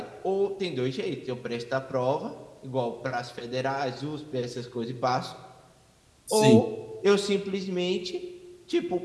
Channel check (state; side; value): identical; both; correlation 1.00